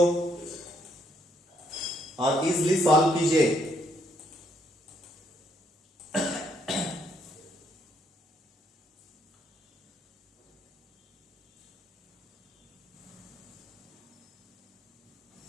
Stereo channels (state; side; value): normal; both; correlation 0.72